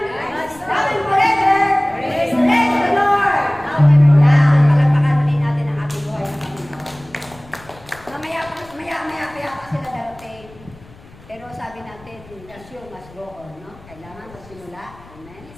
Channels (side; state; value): left; noise; rumble, 23 dB below the sound